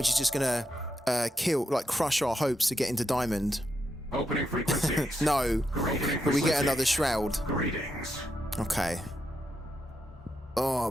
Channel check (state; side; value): normal; both; correlation 0.83